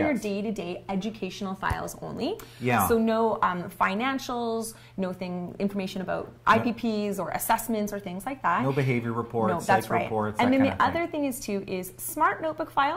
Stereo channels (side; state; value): both; identical; correlation 1.00